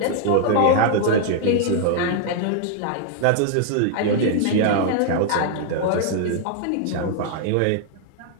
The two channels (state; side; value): different; both; correlation 0.00